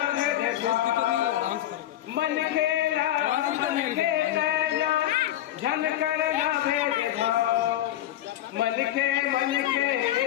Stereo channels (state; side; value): quieter; right; 13.1 dB